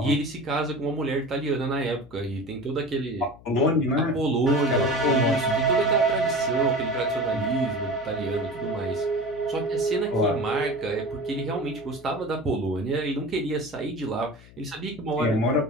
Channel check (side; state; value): left; noise; hum, 22 dB below the sound